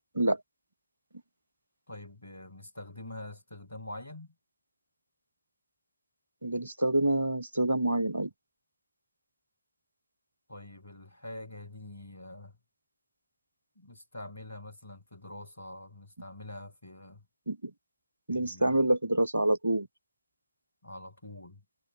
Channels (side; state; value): both; inverted; correlation -0.90